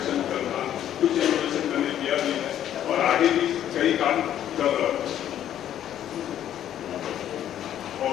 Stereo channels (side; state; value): right; quieter; 10.9 dB